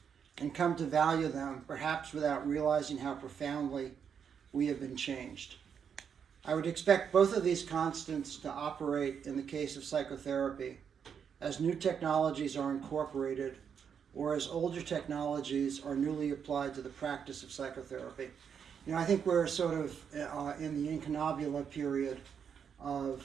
and come to value them, perhaps without realizing how profoundly we have been changed. I would expect both of these constants to operate in the case of psychotherapy, as new technologies are incorporated or as older technologies are newly applied to the practice of psychotherapy. You know, I think we're sort of in the incunabula period of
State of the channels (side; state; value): left; quieter; 7.3 dB